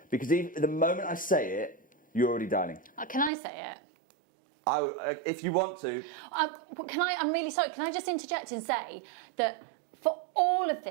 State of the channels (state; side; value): drops out; left; at 3.3 s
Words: because even the moment I say it, you're already dialing. Can I say it? If you want to. I'm really sorry. Can I just interject and say that for all of